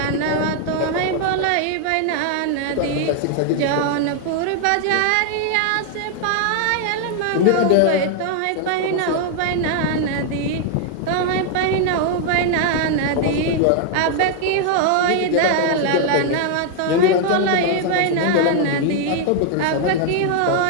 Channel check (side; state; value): both; different; correlation 0.00